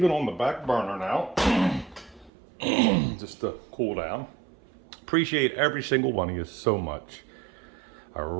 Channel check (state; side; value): drops out; left; at 2.3 s